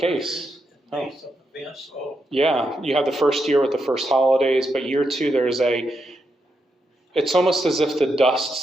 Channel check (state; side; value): normal; both; correlation 0.83